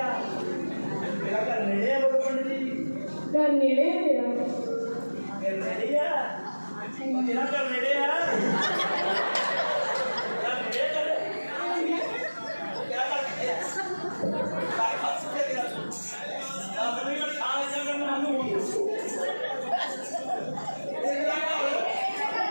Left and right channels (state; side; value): inverted; both; correlation -1.00